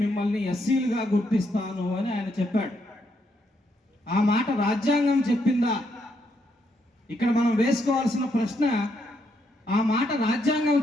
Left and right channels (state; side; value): normal; both; correlation 0.76